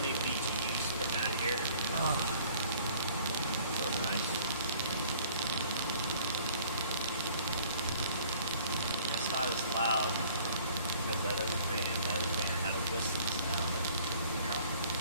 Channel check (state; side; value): inverted; both; correlation -0.55